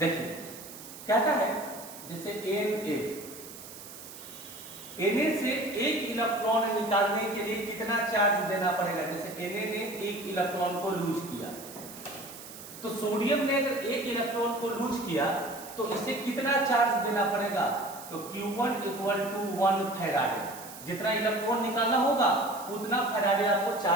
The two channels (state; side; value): noise; right; hiss, 14 dB below the sound